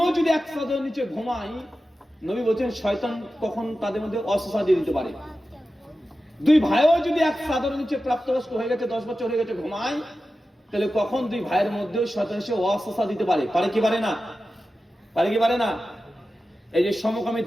যদি এক চাদরের নিচে ঘুমায়, নবী বলছেন শয়তান কখন তাদের মধ্যে অসুস্থতা দিয়ে দিতে পারে। দুই ভাইও যদি এক চাদরের নিচে প্রাপ্তবয়স্ক হয়ে গেছে, 10 বছর হয়ে গেছে, ঘুমায়, তাহলে কখন দুই ভাইয়ের মধ্যেও শয়তান এসে অসুস্থতা দিতে পারে। পারে কি পারে না? পারে কি পারে না? এই যে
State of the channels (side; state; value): both; normal; correlation 0.93